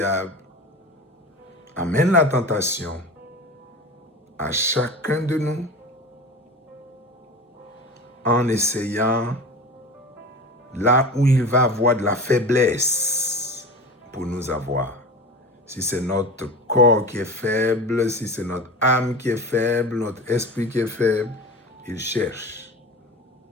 amène la tentation à chacun de nous en essayant là où il va avoir de la faiblesse pour nous avoir. Si c'est notre corps qui est faible, si c'est notre âme qui est faible, notre esprit qui est faible, il cherche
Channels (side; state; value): both; normal; correlation 0.31